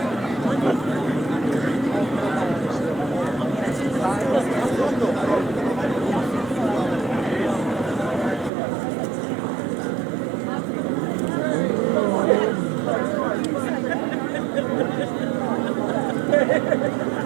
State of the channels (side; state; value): left; drops out; at 8.5 s